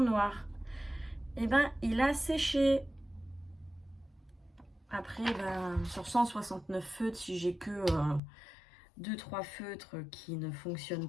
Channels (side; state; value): right; drops out; at 8.2 s